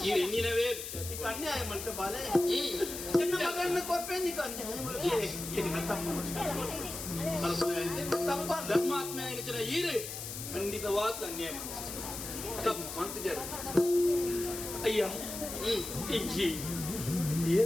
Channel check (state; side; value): noise; left; hiss, 7 dB below the sound